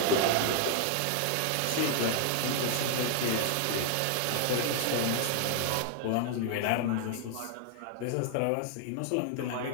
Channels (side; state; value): both; different; correlation 0.00